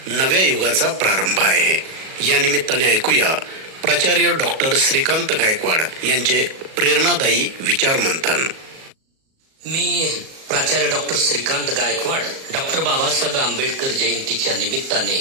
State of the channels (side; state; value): left; late; 37 ms